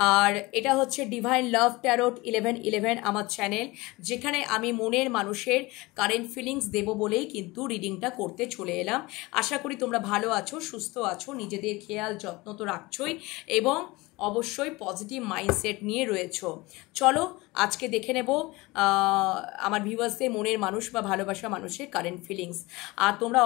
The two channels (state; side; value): quieter; right; 22.3 dB